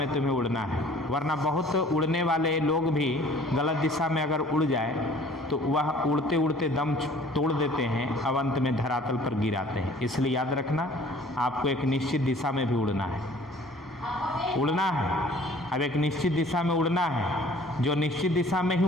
तुम्हें उड़ना है, वरना बहुत उड़ने वाले लोग भी गलत दिशा में अगर उड़ जाए तो वह उड़ते उड़ते दम तोड़ देते हैं, अब अंत में धरातल पर गिराते हैं। इसलिए याद रखना, आपको एक निश्चित दिशा में भी उड़ना है, उड़ना है। अब एक निश्चित दिशा में उड़ना है, जो निश्चित दिशा में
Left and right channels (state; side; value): normal; both; correlation 0.52